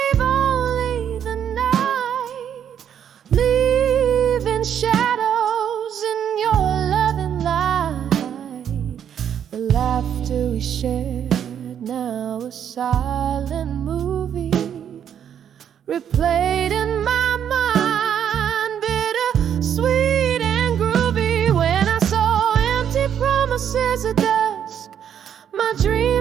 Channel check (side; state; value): left; quieter; 9.0 dB